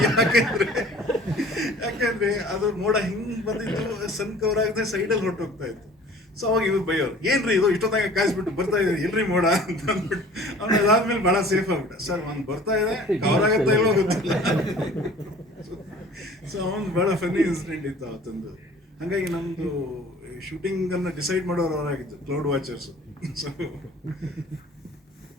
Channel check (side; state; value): both; normal; correlation 0.48